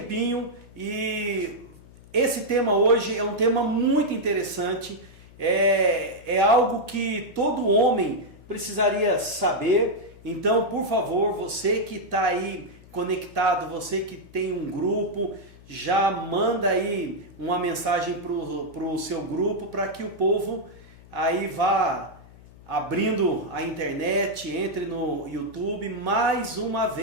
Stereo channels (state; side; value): noise; left; hum, 22 dB below the sound